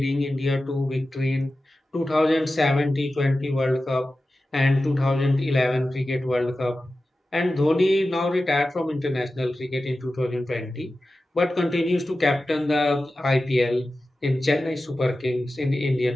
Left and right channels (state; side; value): normal; both; correlation 0.94